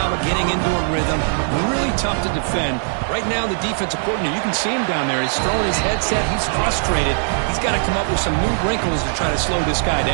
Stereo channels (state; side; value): silent; left; digital silence